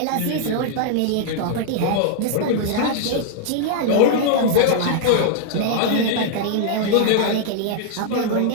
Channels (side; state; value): both; different; correlation 0.00